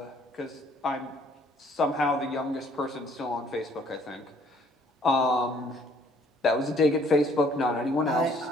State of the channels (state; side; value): normal; both; correlation 0.61